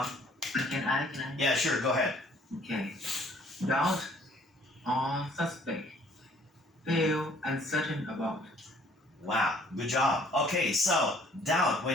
Can I? Yeah, sure, go ahead. Okay. Doubt or suspect. Feel uncertain about. Wow, good job. Okay, so doubt.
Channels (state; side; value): normal; both; correlation 0.59